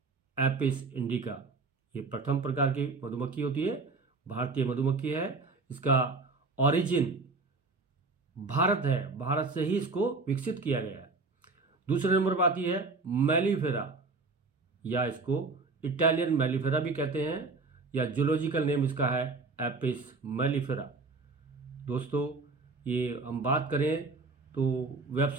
एपिस इंडिका। ये प्रथम प्रकार की मधुमक्खी होती है, भारतीय मधुमक्खी है। इसका ओरिजिन भारत है, भारत से ही इसको विकसित किया गया है। दूसरे नंबर पर आती है मेलिफेरा, या इसको इटालियन मेलिफेरा भी कहते हैं, या जूलॉजिकल नेम इसका है एपिस मेलिफेरा। दोस्तों ये हम बात करें तो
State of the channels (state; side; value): quieter; left; 3.9 dB